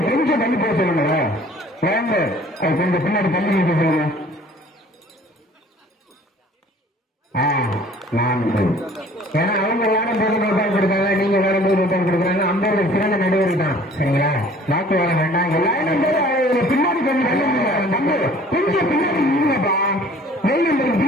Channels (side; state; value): both; normal; correlation 0.52